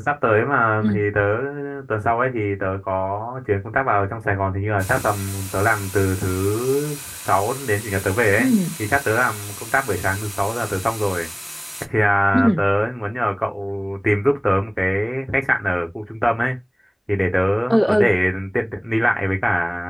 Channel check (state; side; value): identical; both; correlation 1.00